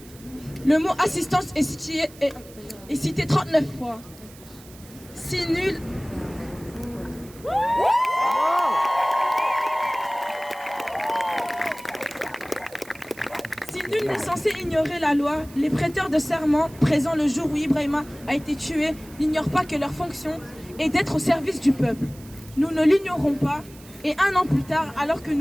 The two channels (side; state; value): right; noise; hiss, 22 dB below the sound